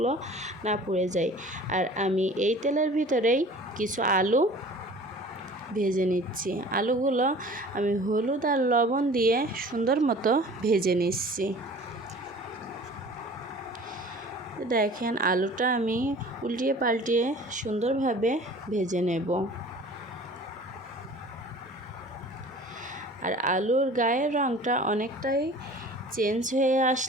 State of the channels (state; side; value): normal; both; correlation 0.45